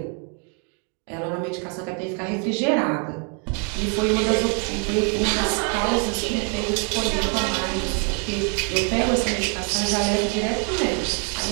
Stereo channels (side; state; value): left; quieter; 38.7 dB